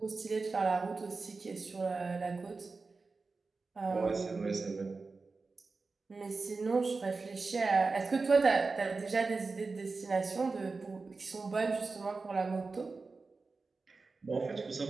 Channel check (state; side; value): quieter; left; 4.1 dB